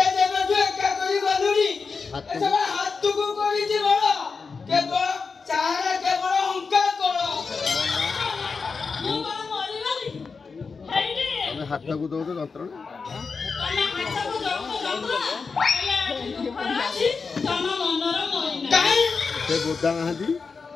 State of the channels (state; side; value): quieter; right; 4.9 dB